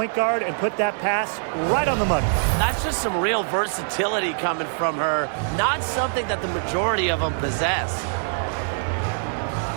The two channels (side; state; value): left; silent; digital silence